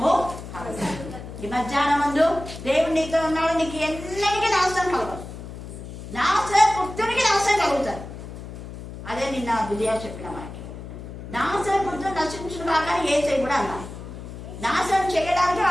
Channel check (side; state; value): left; noise; hum, 11 dB below the sound